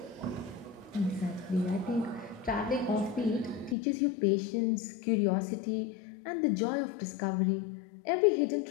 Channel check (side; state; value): right; drops out; at 3.8 s